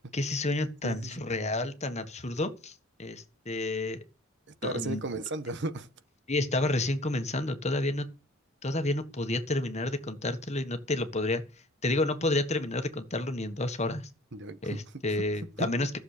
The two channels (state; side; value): normal; both; correlation 0.49